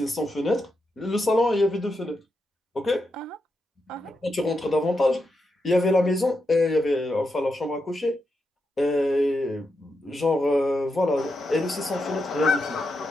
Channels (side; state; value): both; normal; correlation 0.86